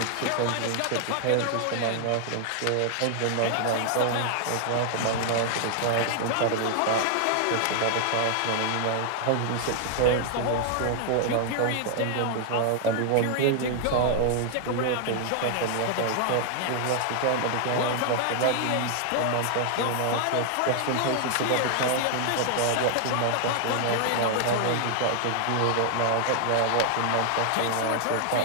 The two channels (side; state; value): both; different; correlation 0.00